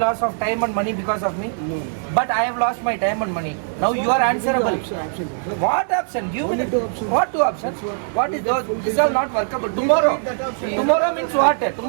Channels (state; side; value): silent; left; 65 dB below the other